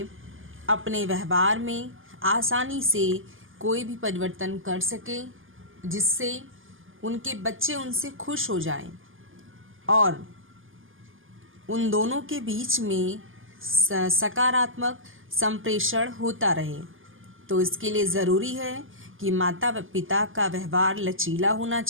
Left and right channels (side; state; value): left; late; 0.58 ms